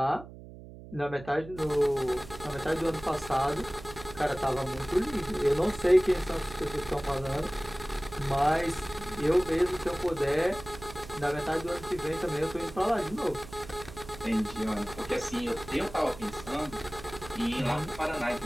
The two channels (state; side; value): noise; right; hum, 15 dB below the sound